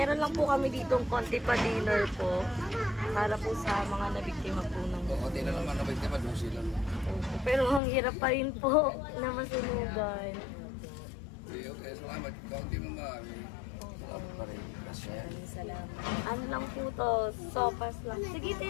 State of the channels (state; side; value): drops out; right; at 7.8 s